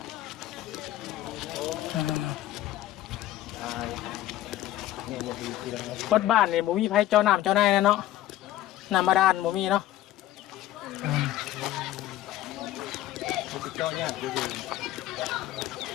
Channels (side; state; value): right; quieter; 14.0 dB